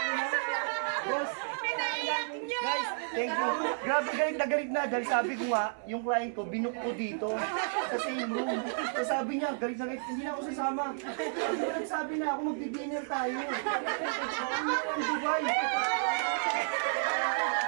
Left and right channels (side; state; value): left; silent; 57 dB below the other